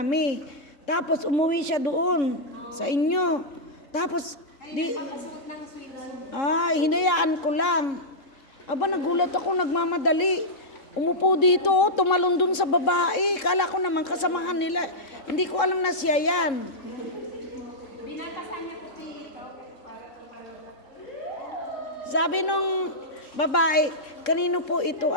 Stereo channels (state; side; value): late; right; 3.7 ms